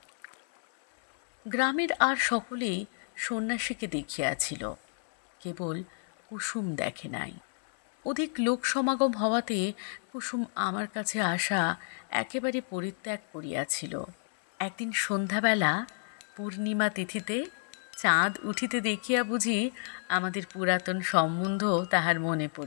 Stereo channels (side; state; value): right; silent; 58 dB below the other